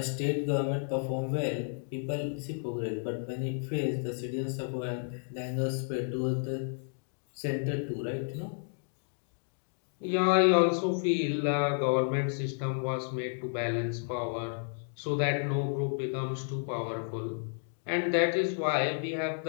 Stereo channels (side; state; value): right; silent; digital silence